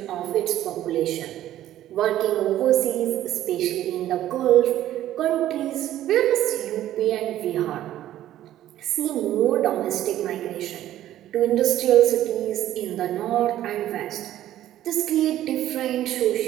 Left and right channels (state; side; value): quieter; left; 12.9 dB